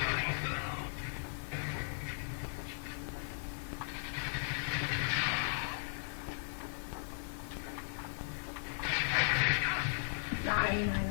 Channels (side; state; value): right; silent; 53 dB below the other